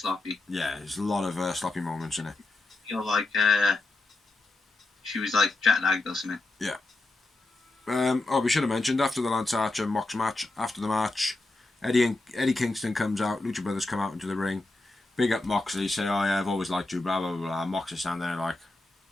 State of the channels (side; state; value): right; quieter; 3.1 dB